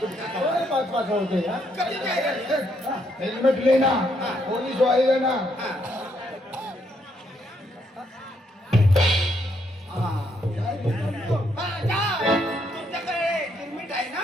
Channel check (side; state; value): both; normal; correlation 0.74